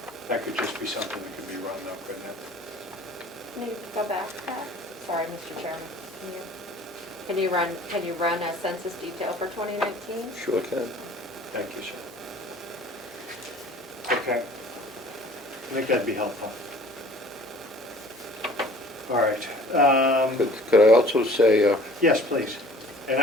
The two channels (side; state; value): both; normal; correlation 0.49